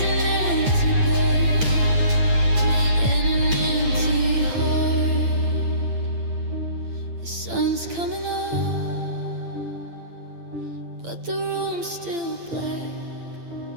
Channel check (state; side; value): late; left; 8.8 ms